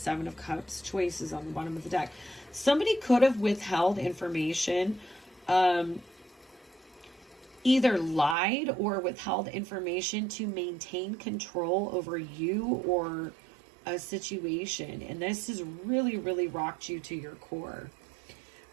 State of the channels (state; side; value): drops out; left; at 8.3 s